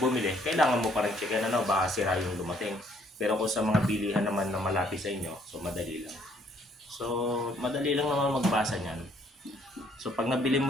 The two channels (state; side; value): normal; both; correlation 0.65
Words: kailangan mo pa rin checkin baka sira yung dumating. Pero kung sa mga bilihan naman na malapit sa inyo, so madali lang. So madali lang naman magbasa niyan. So pag nabili